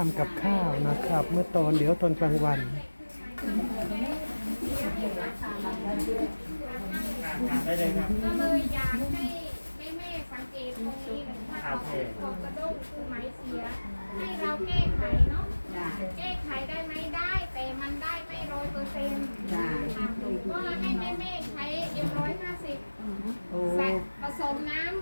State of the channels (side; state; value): both; inverted; correlation -1.00